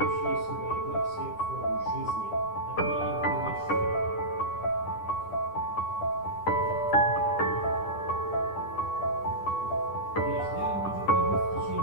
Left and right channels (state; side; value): late; right; 9.9 ms